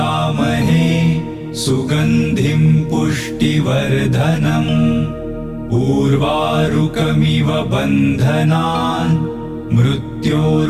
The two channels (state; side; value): identical; both; correlation 1.00